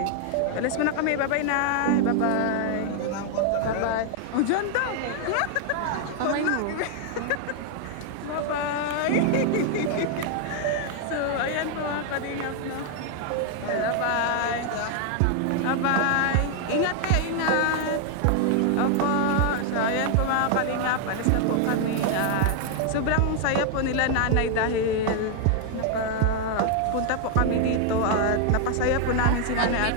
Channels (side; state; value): both; different; correlation 0.00